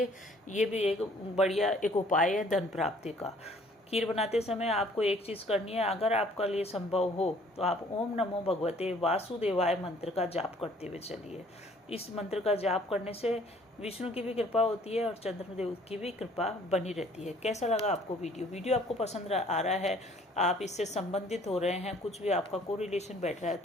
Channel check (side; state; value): both; normal; correlation 0.57